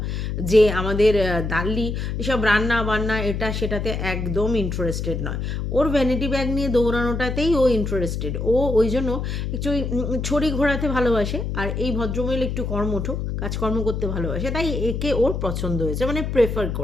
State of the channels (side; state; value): left; noise; hum, 3 dB below the sound